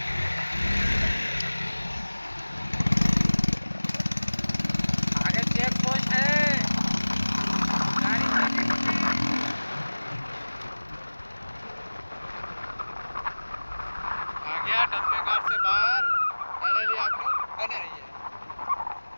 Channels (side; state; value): both; inverted; correlation -1.00